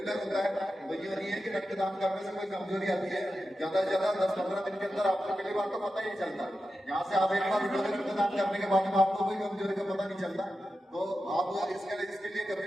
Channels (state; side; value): normal; both; correlation 0.91